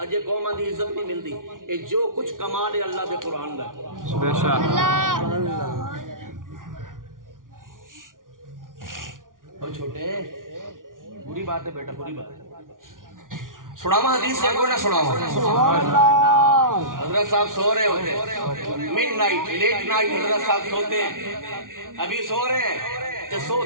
قوم دی عزت نہیں ملتی اے جو کچھ کمال ہے اللہ دے قرآن دا بے شک اور چھوٹے بری بات ہے بیٹا بری بات ہے سناوا حدیث سے کوئی نہ سناوا حضرت صاحب سو رہے ہوتے مڈ نائٹ لیٹ نائٹ حضرت صاحب سوتے ہیں ابھی سو رہے ہیں تے سو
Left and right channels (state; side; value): late; left; 0.89 ms